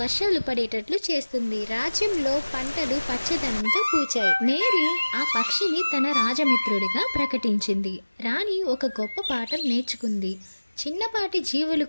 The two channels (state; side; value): inverted; both; correlation -1.00